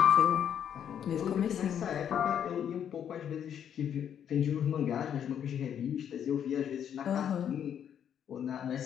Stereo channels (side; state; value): right; quieter; 9.0 dB